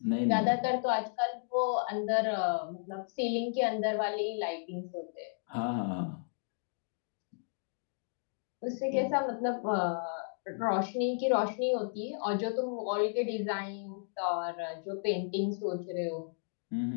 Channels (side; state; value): right; silent; digital silence